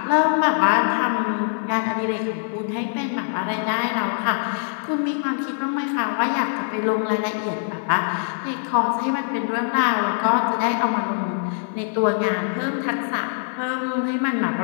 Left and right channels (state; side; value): silent; right; digital silence